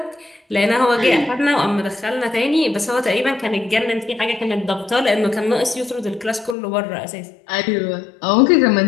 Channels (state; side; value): drops out; right; at 6.6 s